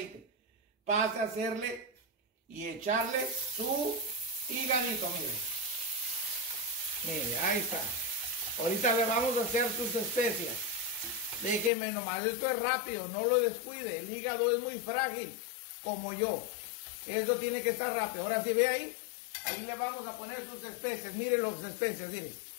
Pase a hacerle y echarle su hígadito, mire. Mire, ahí está. Ahorita le vamos a hacer sus especias. Déjeme nomás, esto es rápido, no lo descuide. El hígado es muy frágil, como yo. Eso tiene que estar rápido. Ahora sí ve ahí. Ahí le vamos a poner sus especias. Miren las especias, miren.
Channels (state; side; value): drops out; right; at 11.7 s